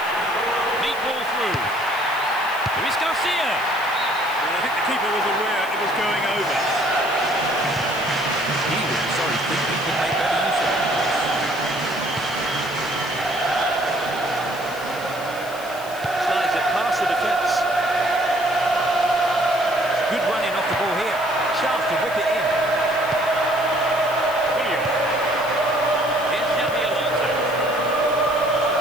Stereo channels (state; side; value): noise; left; hiss, 17 dB below the sound